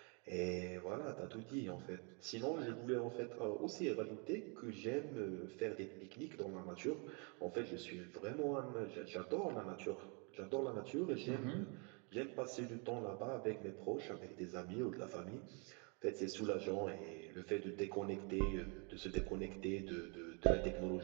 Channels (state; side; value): quieter; left; 35.0 dB